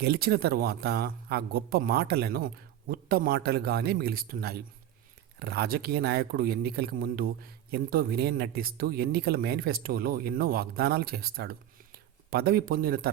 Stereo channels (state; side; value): quieter; left; 11.6 dB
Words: గెలిచిన తర్వాత ఆ గొప్ప మాటలను ఉత్త మాటలుగానే మిగిలిస్తున్నాయి. రాజకీయ నాయకుడు ఎన్నికలకు ముందు ఎంతో వినయం నటిస్తూ ఎన్నికల మేనిఫెస్టోలో ఎన్నో వాగ్దానాలు చేస్తాడు. పదవి పొందిన